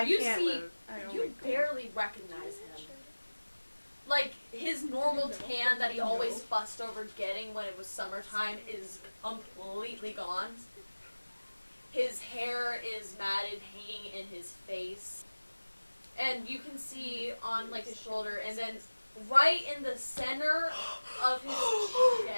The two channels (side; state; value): both; inverted; correlation -1.00